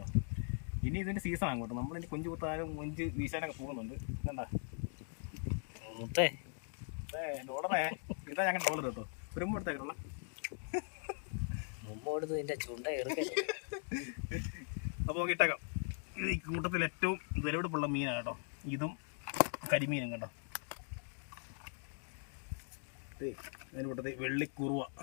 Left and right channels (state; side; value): silent; right; 51 dB below the other